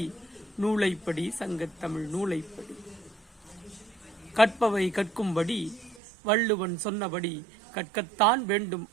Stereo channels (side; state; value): left; drops out; at 6.0 s